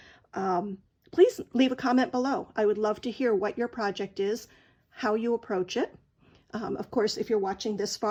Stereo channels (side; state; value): both; identical; correlation 1.00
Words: please leave a comment below. I would love to hear what your project is, how you approach it. Of course, if you're watching this